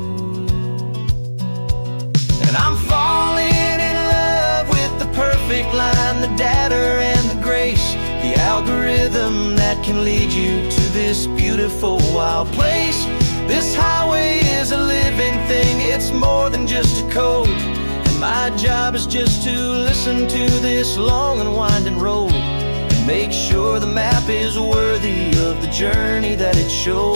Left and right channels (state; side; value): inverted; both; correlation -1.00